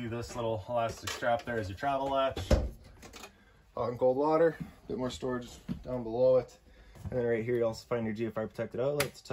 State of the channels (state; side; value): identical; both; correlation 1.00